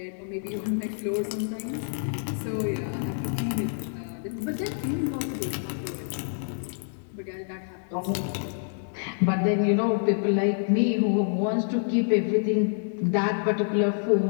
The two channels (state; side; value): silent; right; digital silence